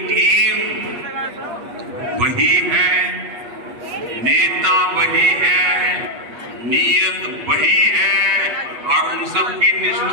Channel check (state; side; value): late; left; 8.3 ms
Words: टीम वही है, नेता वही है, नीयत वही है और उन सब की